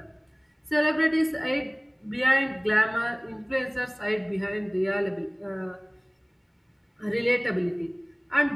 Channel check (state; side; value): identical; both; correlation 1.00